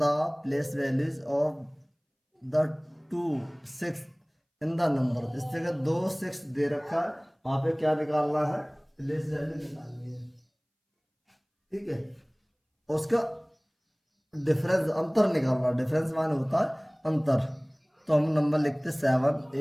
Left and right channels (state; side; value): identical; both; correlation 1.00